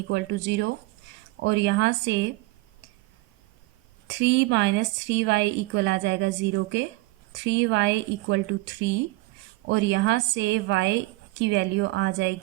to 0, और यहाँ से 3 माइनस 3y इक्वल आ जाएगा 0 के, 3y इक्वल टू 3, और यहाँ से y की वैल्यू आ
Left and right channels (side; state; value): left; quieter; 21.5 dB